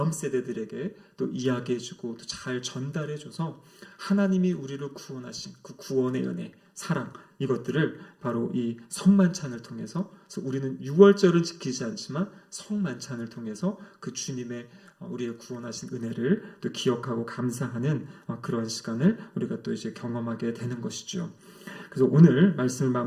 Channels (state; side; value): identical; both; correlation 1.00